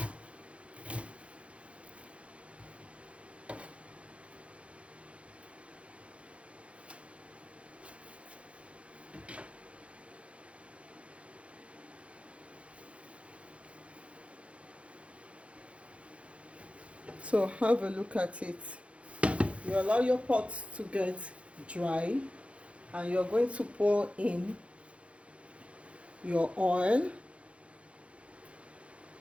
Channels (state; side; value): late; left; 0.061 ms